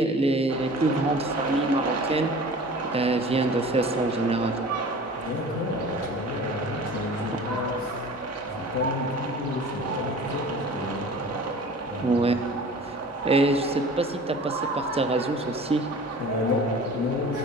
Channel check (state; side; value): normal; both; correlation 0.41